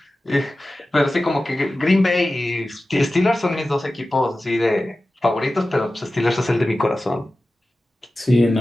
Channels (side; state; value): both; normal; correlation 0.95